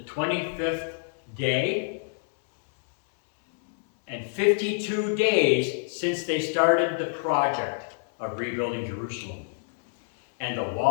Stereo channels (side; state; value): right; silent; 60 dB below the other